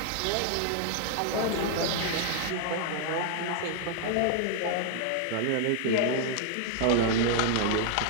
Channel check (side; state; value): both; different; correlation 0.00